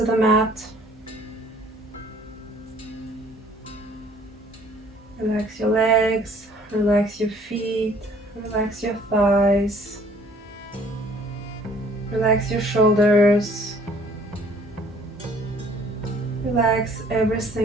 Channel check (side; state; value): both; normal; correlation 0.57